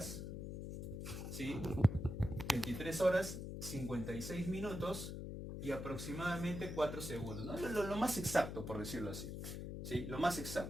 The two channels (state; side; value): noise; left; hum, 6 dB below the sound